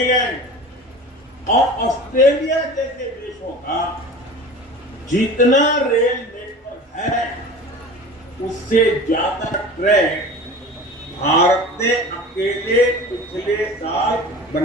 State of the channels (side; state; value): both; normal; correlation 0.37